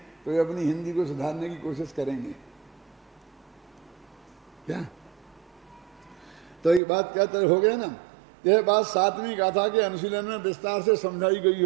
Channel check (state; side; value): drops out; left; at 6.8 s